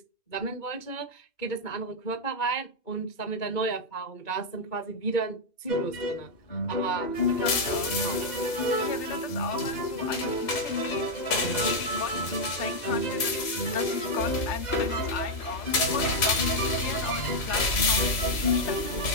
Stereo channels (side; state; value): right; late; 3.0 ms